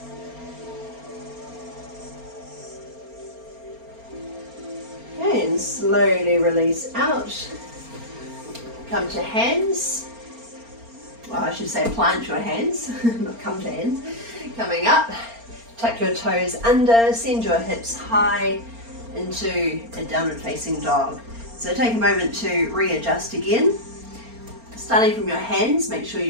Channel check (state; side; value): late; left; 4.3 ms